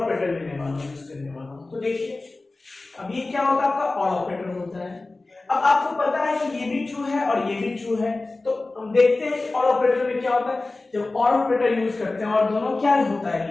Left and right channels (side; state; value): right; quieter; 3.3 dB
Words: लेने वाला हूँ, यूज करने वाला हूँ। तो देखिए अब ये क्या होता है, आपका और ऑपरेटर होता है। अब आपको पता है कि ये भी ट्रू है और ये भी ट्रू है, तो हम देखते हैं कि और ऑपरेटर में क्या होता है, जब और ऑपरेटर यूज करते हैं और दोनों क्या होता है